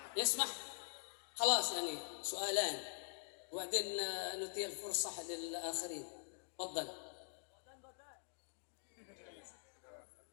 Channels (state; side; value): silent; right; digital silence